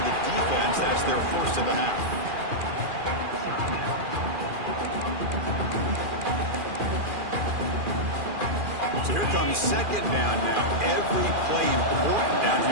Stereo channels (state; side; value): late; left; 2.4 ms